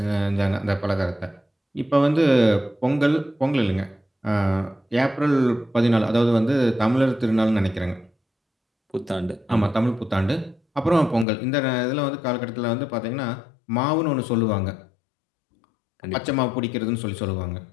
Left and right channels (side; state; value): right; drops out; at 11.2 s